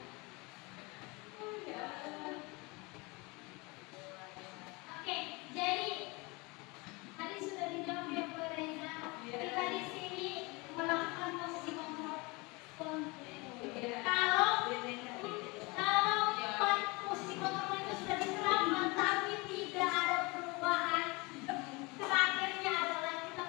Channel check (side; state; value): right; quieter; 26.1 dB